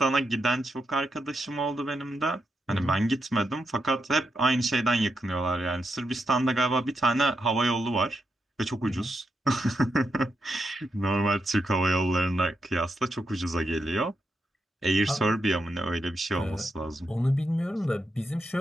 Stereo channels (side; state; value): both; normal; correlation 0.84